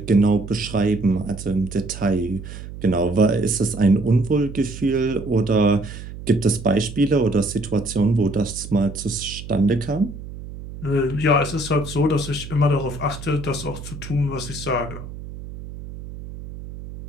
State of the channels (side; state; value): right; noise; hum, 12 dB below the sound